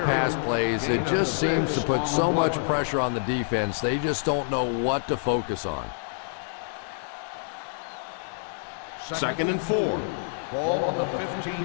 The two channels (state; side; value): silent; right; digital silence